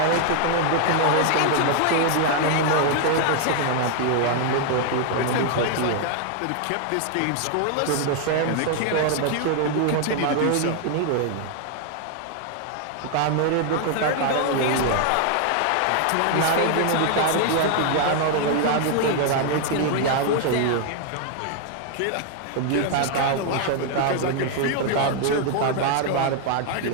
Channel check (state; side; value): different; both; correlation 0.00